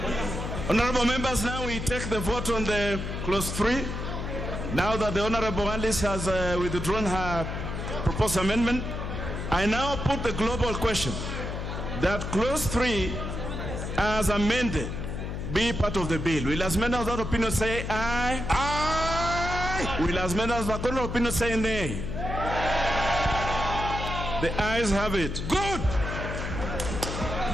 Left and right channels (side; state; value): left; noise; hum, 5 dB below the sound